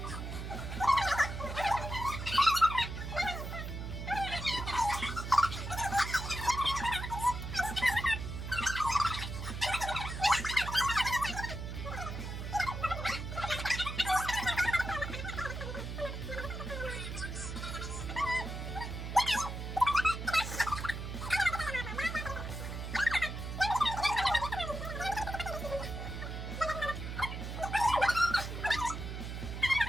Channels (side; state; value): right; noise; hum, 6 dB below the sound